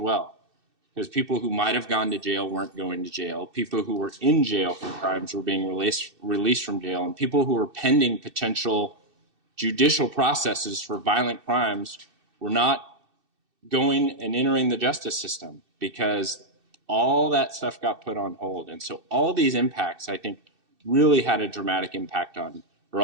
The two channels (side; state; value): left; late; 2.6 ms